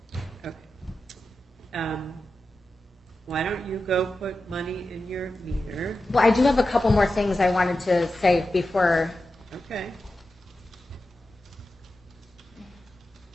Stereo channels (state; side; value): normal; both; correlation 0.92